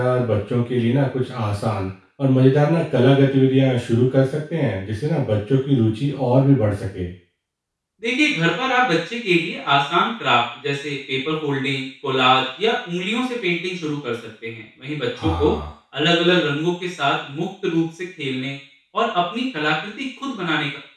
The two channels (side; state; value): both; identical; correlation 1.00